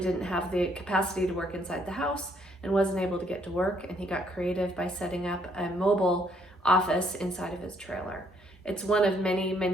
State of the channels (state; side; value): normal; both; correlation 0.68